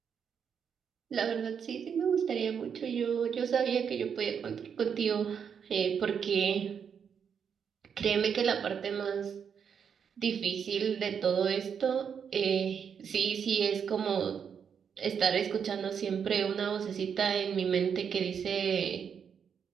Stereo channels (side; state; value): left; quieter; 7.2 dB